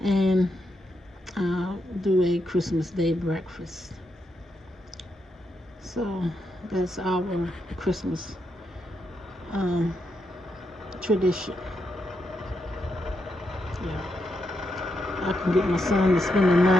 and do a Christmas Day breakfast. So that's our Christmas tradition. Yeah, I can get my son to spend the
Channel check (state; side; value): normal; both; correlation 0.82